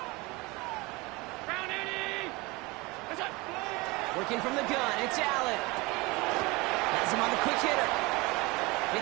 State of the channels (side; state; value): left; quieter; 23.9 dB